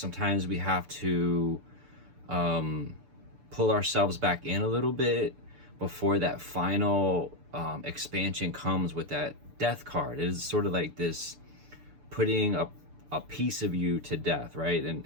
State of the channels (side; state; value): left; late; 6.9 ms